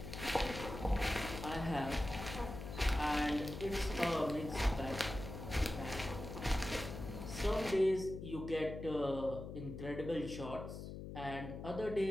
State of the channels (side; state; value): left; noise; hum, 8 dB below the sound